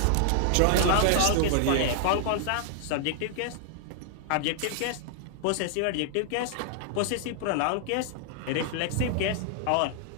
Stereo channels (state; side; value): different; both; correlation -0.01